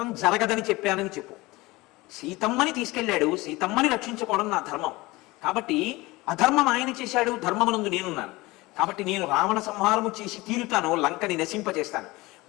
జరగదని చెప్పానని చెప్పు. సీతమ్మని తీసుకెళ్ళాడు, సీతమ్మని రక్షించుకోవడం నా ధర్మం. కాబట్టి అధర్మం ఆయన చేశాడు, ధర్మమునందు నేనున్నాను. కాబట్టి నేను రావణ సంహారము చేసి తీరుతాను, లంకని నశింపచేస్తాను.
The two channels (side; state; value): right; quieter; 21.2 dB